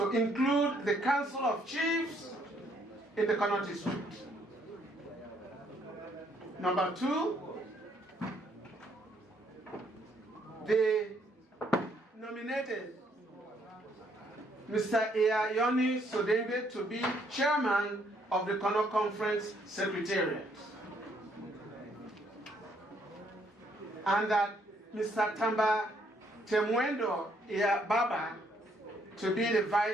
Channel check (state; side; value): normal; both; correlation 0.69